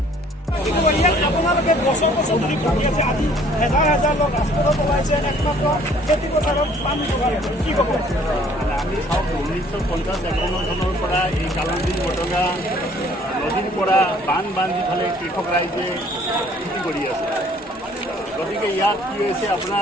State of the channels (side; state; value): both; normal; correlation 0.58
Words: আপোনালোকে বছৰ বছৰ ধৰি ভাবি আছে, আজি হাজাৰ হাজাৰ লোক ৰাজপথত ওলাইছে একমাত্ৰ খেতি পথাৰত পানী যোগাৰ কি ক'ব? আমি চাওক 1950-51 চনৰ পৰা এই কালামদিন বটগা নদীৰ পৰা বান্ধি ফালে কৃষক ৰাইজে খেতি কৰি আছে। গতিকে ইয়াত কি হৈছে